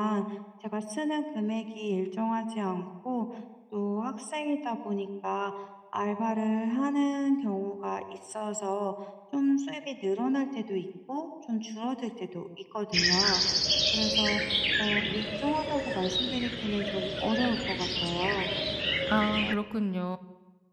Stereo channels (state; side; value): identical; both; correlation 1.00